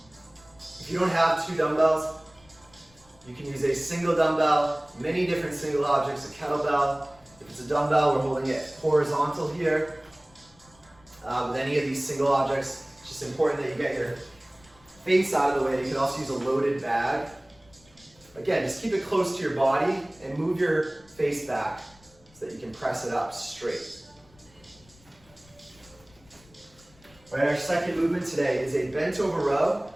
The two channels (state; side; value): noise; left; rumble, 28 dB below the sound